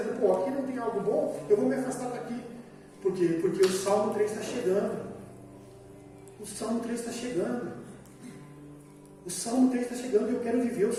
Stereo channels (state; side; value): identical; both; correlation 1.00